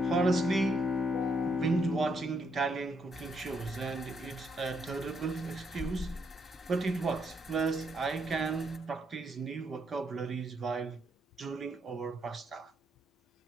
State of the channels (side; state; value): both; normal; correlation 0.75